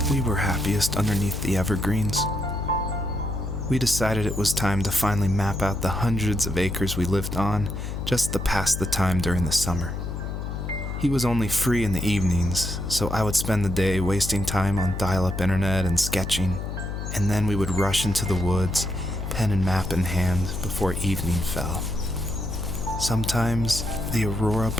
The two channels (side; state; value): left; noise; hum, 5 dB below the sound